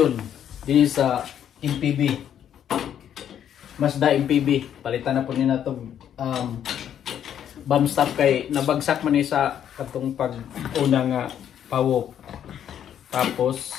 din sa MPB. Mazda MPB. Palitan na po nila itong bomb stop kay nabagsak man sa katong pag-una nga pawok. Tapos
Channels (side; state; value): right; quieter; 9.7 dB